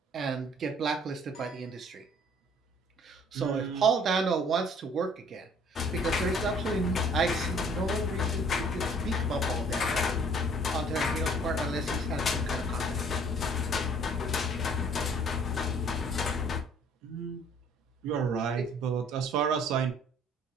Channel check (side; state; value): both; normal; correlation 0.57